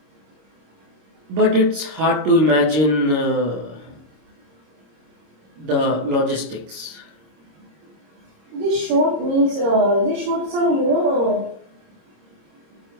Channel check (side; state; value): left; late; 26 ms